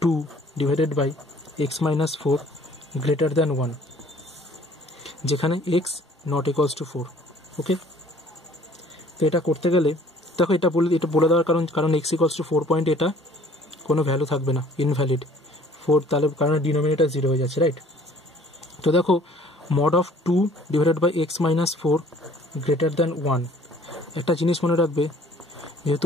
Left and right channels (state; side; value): normal; both; correlation 0.55